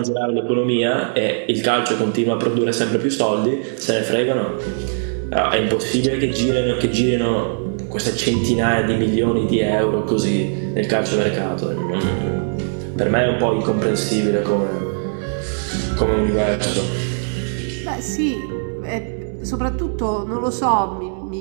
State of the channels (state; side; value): silent; left; digital silence